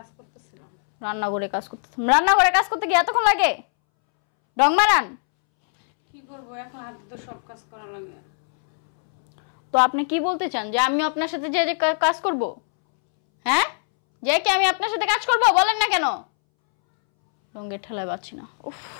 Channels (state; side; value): silent; right; 64 dB below the other